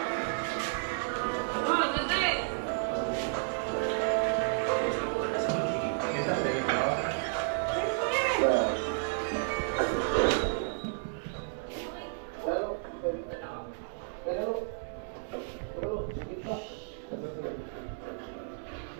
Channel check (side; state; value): left; silent; 56 dB below the other